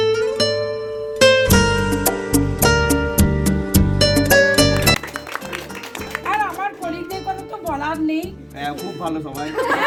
বলার নেই। খুব ভালো সবাই।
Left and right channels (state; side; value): identical; both; correlation 1.00